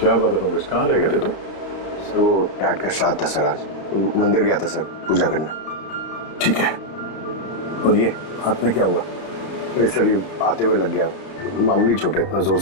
बात है पंकज, कहाँ रह गए थे तुम? सर वो डैड का श्राद्ध था सर, आज मंदिर गया था सर पूजा करने। ठीक है, और ये हाथ में क्या हुआ? अरे सर ये आते हुए लग गया, मामूली चोट है, इतना जोर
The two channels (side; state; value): right; late; 31 ms